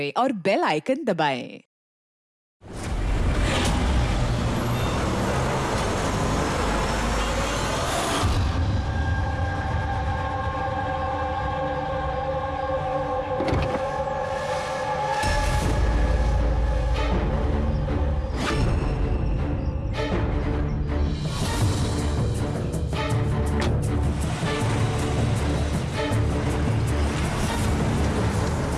और बेल आइकन दबाएं।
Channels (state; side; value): identical; both; correlation 1.00